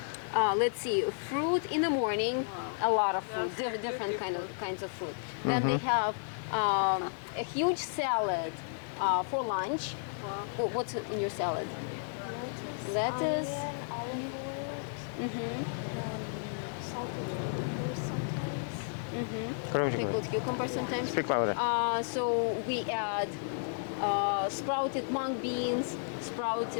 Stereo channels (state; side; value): silent; right; digital silence